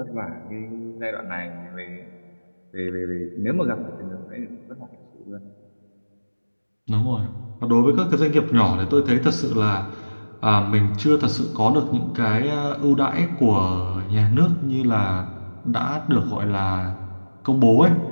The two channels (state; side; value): inverted; both; correlation -1.00